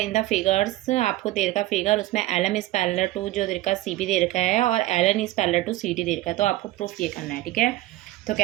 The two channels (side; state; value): left; quieter; 16.6 dB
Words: इन द फिगर्स, आपको दे रखा फिगर, उसमें L M is parallel to जो दे रखा सी बी दे रखा है और L N is parallel to C D दे रखा है। तो आपको प्रूफ ये करना है, ठीक है। तो